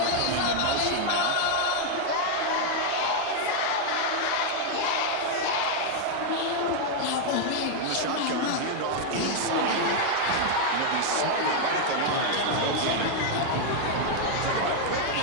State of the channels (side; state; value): both; different; correlation 0.00